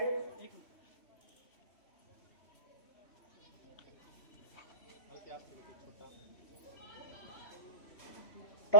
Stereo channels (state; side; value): late; right; 3.1 ms